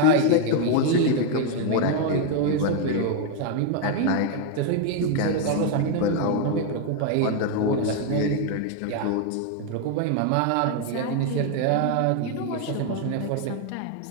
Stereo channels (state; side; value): different; both; correlation 0.01